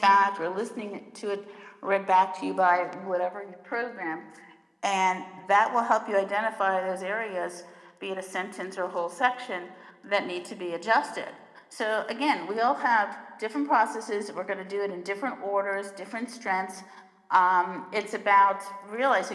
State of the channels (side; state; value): both; identical; correlation 1.00